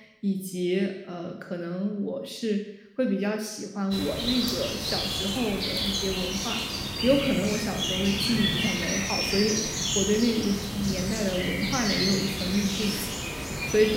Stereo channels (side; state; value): both; identical; correlation 1.00